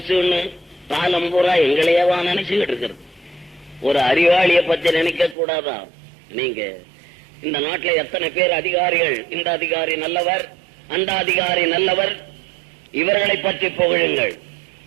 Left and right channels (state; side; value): drops out; left; at 5.4 s